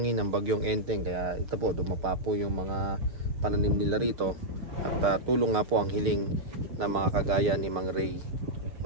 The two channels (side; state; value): left; late; 6.4 ms